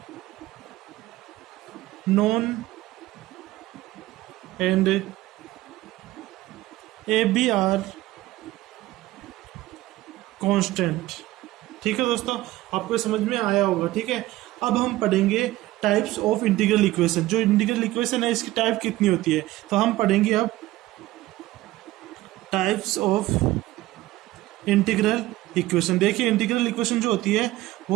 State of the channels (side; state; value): left; quieter; 17.0 dB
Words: known and AB are constant, ठीक है दोस्तों। आपको समझ में आया होगा, ठीक है। अब हम पढ़ेंगे टाइप्स ऑफ इंटीग्रल इक्वेशन। जो इंटीग्रल इक्वेशन है इसकी टाइप कितनी होती है, तो हम पढ़ेंगे अब टाइप्स ऑफ इंटीग्रल इक्वेशन। देखिए, इंटीग्रल इक्वेशन जो होती है